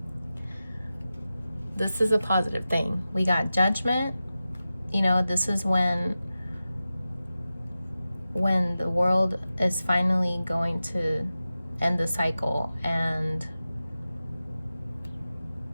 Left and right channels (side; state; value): both; inverted; correlation -0.94